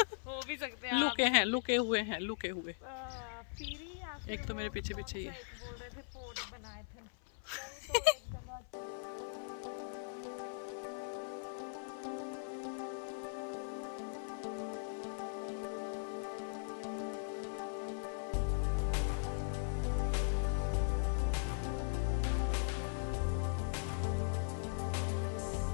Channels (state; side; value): silent; right; 51 dB below the other